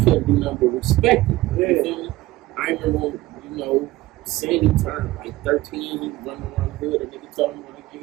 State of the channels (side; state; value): left; quieter; 17.7 dB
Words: couldn't do nothing but respect it. Yeah. You feel me? I remember, Sandy turned like 13, he running around the hood, and nigga told him, like,